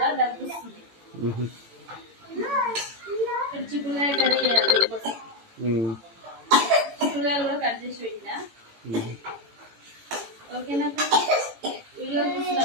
దగ్గుస్తుంది. ఇక్కడ చిక్కుడుకాయ కర్రీ చేయాలి. చిక్కుడుకాయలు కూడా కట్ చేసి పెట్టినా. ఓకేనా? వీడియో చూసిన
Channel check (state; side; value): late; left; 18 ms